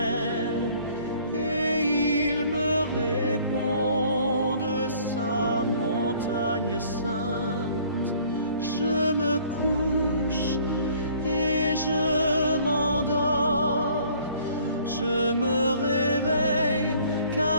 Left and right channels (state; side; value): inverted; both; correlation -0.56